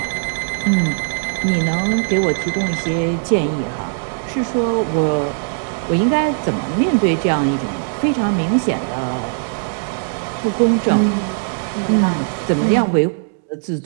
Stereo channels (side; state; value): left; silent; digital silence